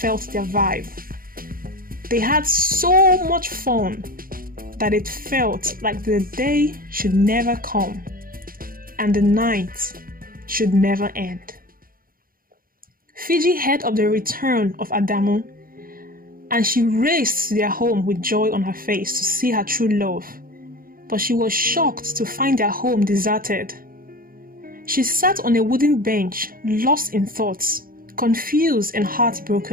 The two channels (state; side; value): late; left; 0.42 ms